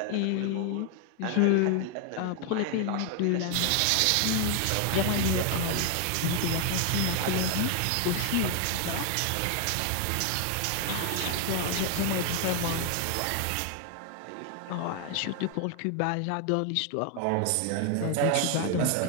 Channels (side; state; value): both; different; correlation 0.00